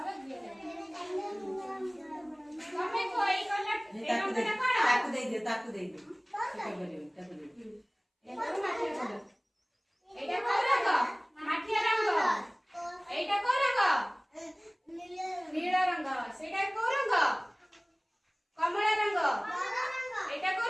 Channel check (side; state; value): both; identical; correlation 1.00